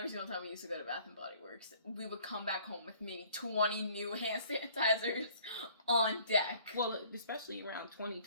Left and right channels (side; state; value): both; inverted; correlation -0.56